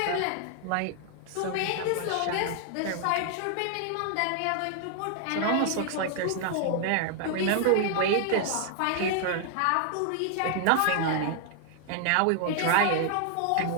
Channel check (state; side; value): different; both; correlation 0.00